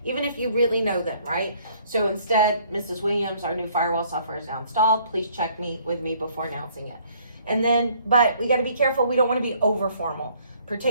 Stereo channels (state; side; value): inverted; both; correlation -0.61